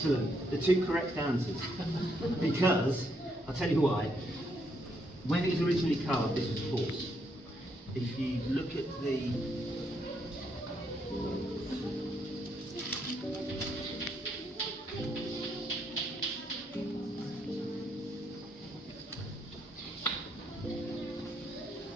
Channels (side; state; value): both; normal; correlation 0.75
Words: The two correct answers. Because I'll tell you why. When it was originally carved, this was a horse. If you look at the